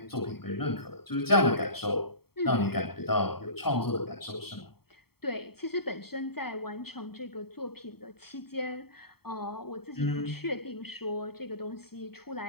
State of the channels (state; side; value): late; right; 0.95 ms